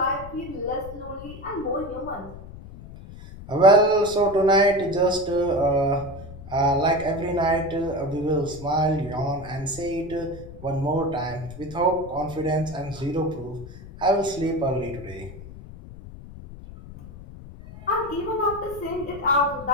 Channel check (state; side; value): noise; left; rumble, 15 dB below the sound